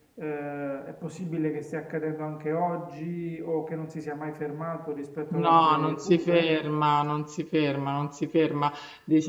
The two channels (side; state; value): both; identical; correlation 1.00